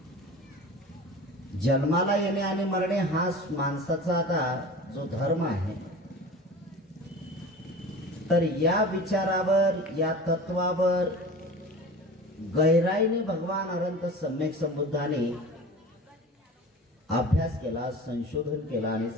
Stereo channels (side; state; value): both; normal; correlation 0.36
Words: जन्माला येणे आणि मरणे हा माणसाचा आता जो धर्म आहे, तर या विचारावर, या तत्वावर गहराईने भगवान अनंत सम्यक संबुद्धाने अभ्यास केला, संशोधन केला आणि